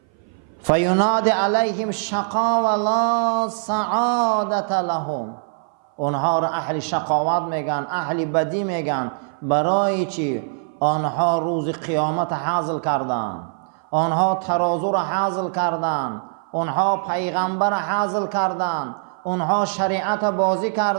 فیناد علیهم شقا و لا سعادت لهم. اونها را اهل شقاوت میگن، اهل بدی میگن. برای چی؟ آنها روز قیامت حاصل کردن، آنها ترازو را حاصل کردن، آنها پیغمبر را حاصل کردن، آنها شریعت بازی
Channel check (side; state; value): left; silent; 58 dB below the other